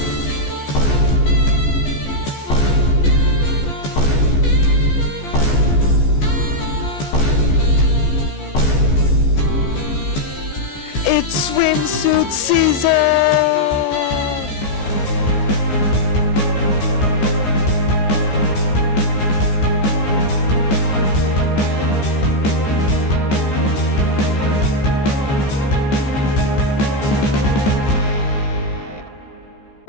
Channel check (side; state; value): right; late; 14 ms